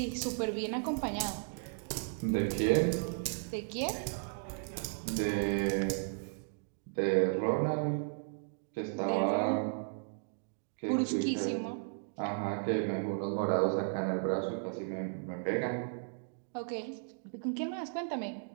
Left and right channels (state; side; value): silent; left; digital silence